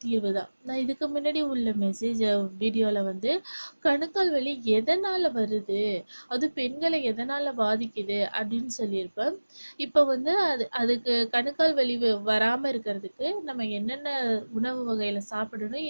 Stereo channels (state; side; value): inverted; both; correlation -1.00